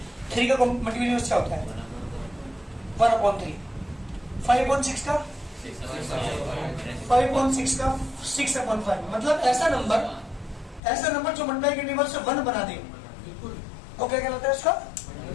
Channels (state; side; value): drops out; right; at 10.8 s